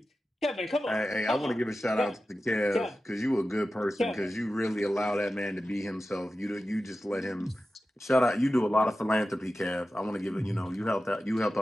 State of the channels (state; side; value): normal; both; correlation 0.94